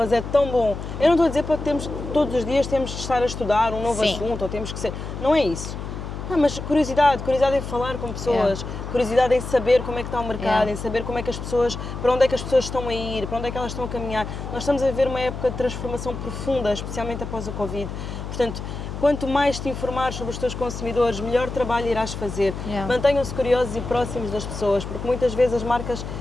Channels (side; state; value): left; noise; hum, 7 dB below the sound